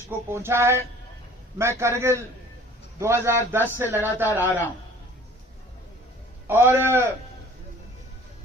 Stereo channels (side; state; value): both; normal; correlation 0.50